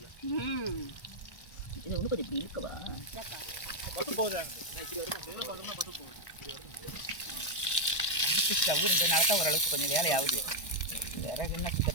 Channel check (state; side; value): late; right; 1.2 ms